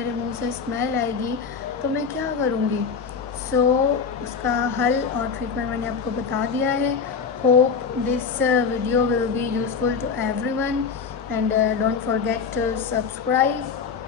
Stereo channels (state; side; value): quieter; right; 5.8 dB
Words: मुंह से स्मेल आएगी तो मैं क्या करूंगी। सो उसका हल और ट्रीटमेंट मैंने आपको बता दिया है। Hope this video will be useful to everyone and don't forget to subscribe,